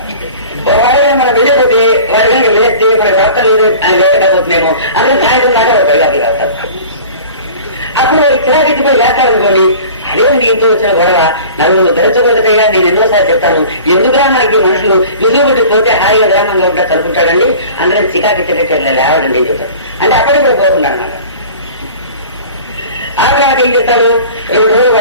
మనం వెళ్ళిపోతే వారి కనుక లేస్తే మన ప్రార్థన లేదు ఆయన లేకపోతున్నామో అందుకని సాయంత్రం దాకా బయటకు రాస్తారు. అప్పుడు చిరాకెత్తిపోయి లేస్తారనుకోండి, అదేంటి ఇంట్లో వచ్చిన గొడవ నలుగురు ధరించబోతుంటేగా నేను ఎన్నోసార్లు చెప్తాను. ఎందుకురా మనకి మనుషులు విజుబుట్టి పోతే హాయిగా గ్రామంలో ఉంటా చదువుకుంటాడండి, అందరం చికాకెత్తినట్టు లేవడండి ఏం చెప్తారు. అంటే అక్కడికి కూడా పోకుండా అనమాట. ఆ తర్వాత ఏం చేస్తాడు, 2 రోజులు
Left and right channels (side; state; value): both; inverted; correlation -0.42